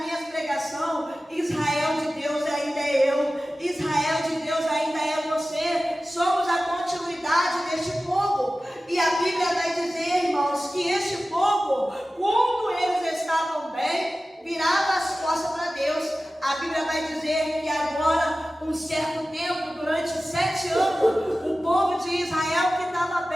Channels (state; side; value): normal; both; correlation 0.95